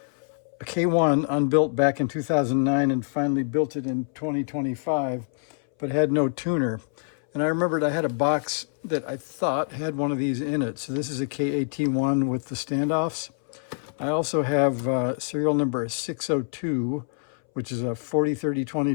a K1 unbuilt back in 2009 and finally built it in 2025, but had no tuner. And I remembered I had a box that I thought had one of these in it. So this is a KAT1 with the standoffs. I also have serial number 602, which is a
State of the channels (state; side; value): silent; right; 61 dB below the other